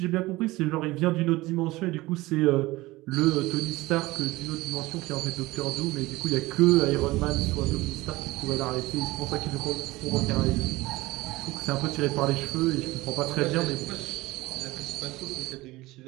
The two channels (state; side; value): quieter; left; 19.6 dB